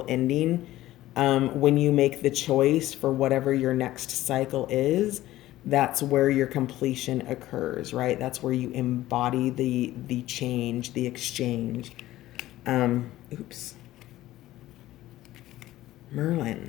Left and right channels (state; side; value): quieter; right; 15.5 dB